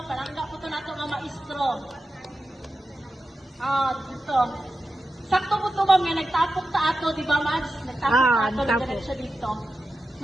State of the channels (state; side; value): normal; both; correlation 0.92